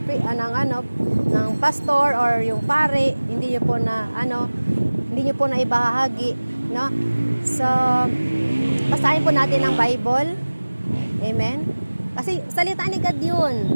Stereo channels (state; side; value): inverted; both; correlation -1.00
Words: pastor or yung pare, hindi niyo po na ibahagi, no? So basahin po natin ang Bible. Amen. Kasi salita ni God yun.